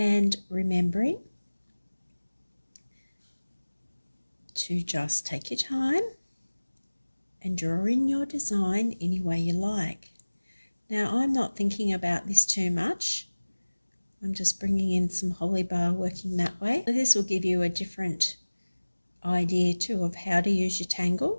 remembering to just take your time and draw in your design any way you like. Now I'm not thinking about this too much. I'm just bringing in some holly bar, working that way. This will give you a different idea too of how to use your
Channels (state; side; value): inverted; both; correlation -1.00